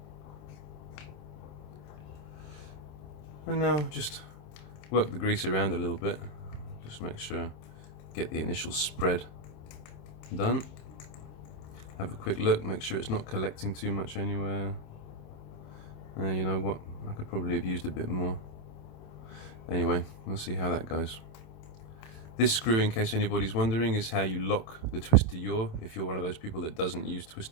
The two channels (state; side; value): late; right; 27 ms